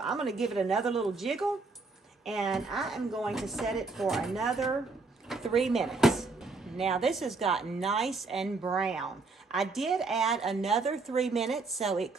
I'm going to give it another little jiggle and I am going to set it for another 3 minutes. Now this has gotten nice and brown. I did add another 3 minutes, so it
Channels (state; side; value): quieter; left; 3.8 dB